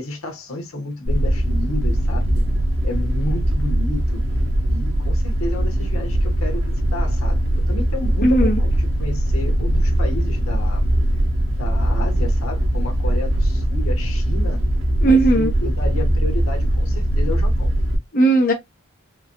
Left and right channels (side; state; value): both; normal; correlation 0.89